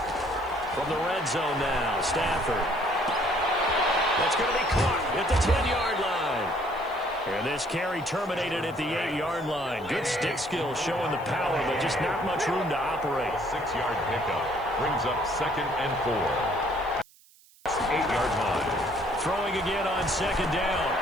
From the red zone now, Stafford. That's going to be caught at the 10-yard line. And this carry terminated at the 8-yard line. Good stick skills showing the power, but just not much room to operate. 6-yard pickup brings up 2nd and 4. 8-yard line. Throwing again on 2nd down.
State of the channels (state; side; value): noise; right; hiss, 27 dB below the sound